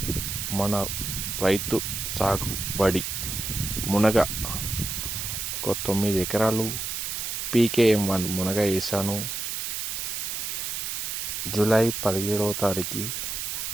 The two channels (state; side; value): noise; right; hiss, 3 dB below the sound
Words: రైతు సాగుబడి మునగ ఒక 9 ఎకరాలు PKM1 మునగ వేసాను. జూలై 17వ తారీఖు